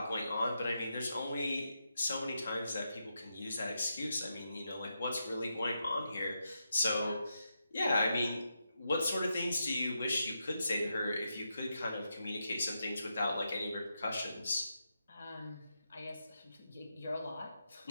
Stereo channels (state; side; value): inverted; both; correlation -0.85